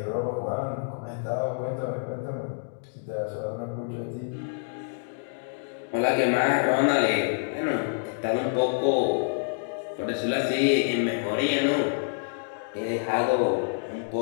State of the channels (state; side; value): silent; right; digital silence